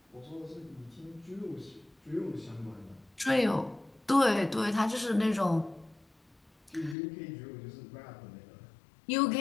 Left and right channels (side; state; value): right; drops out; at 7.0 s